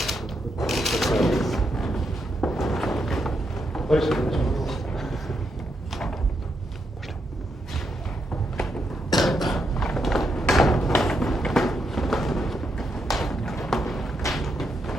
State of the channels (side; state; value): both; normal; correlation 0.81